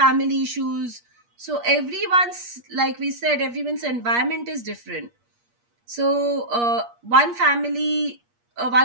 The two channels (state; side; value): late; left; 8.4 ms